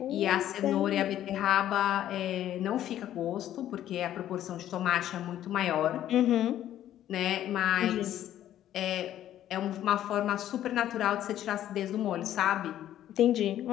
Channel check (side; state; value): right; quieter; 12.0 dB